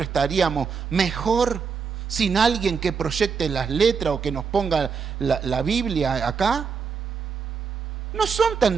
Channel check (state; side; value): quieter; left; 5.8 dB